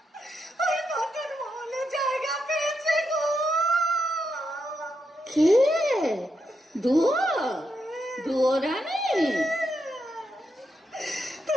ওই নতুন মহলে জায়গা পেয়েছে গো। কে? দুয়োরানী?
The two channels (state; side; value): normal; both; correlation 0.83